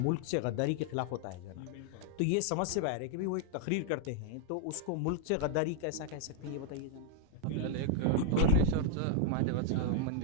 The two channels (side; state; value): both; different; correlation 0.00